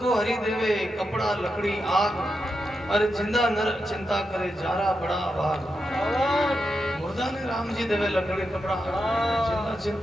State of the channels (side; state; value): both; normal; correlation 0.86